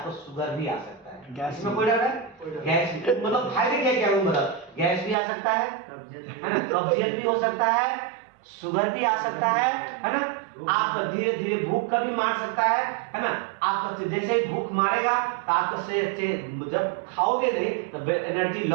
शुगर भी आ सकता है, इसमें कोई डर है? गैस मतलब फायदे क्या मतलब गैस भी आ सकता है ना, कब्जियत भी हो सकता है, शुगर भी आ सकता है ना, आप धीरे धीरे भूख का भी मार सकता है ना। आपका जैसे ही भूख मारेगा तो आपका शरीर जब खाओगे नहीं तो एनर्जी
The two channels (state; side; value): drops out; left; at 5.2 s